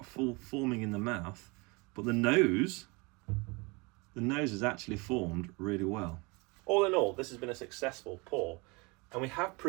full forming in the mouth, but the nose is actually formed really well. All in all, this has been a successful pour, and we have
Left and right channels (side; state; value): left; quieter; 27.6 dB